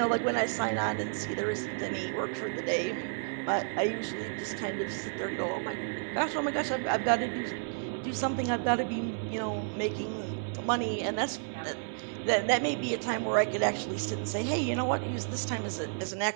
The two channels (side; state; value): left; silent; 57 dB below the other